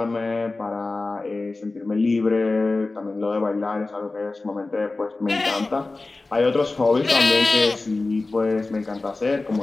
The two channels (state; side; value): quieter; right; 3.3 dB